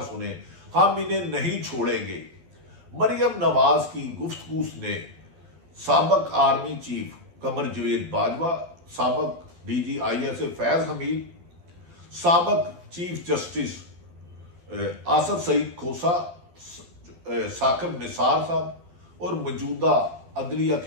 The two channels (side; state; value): left; late; 12 ms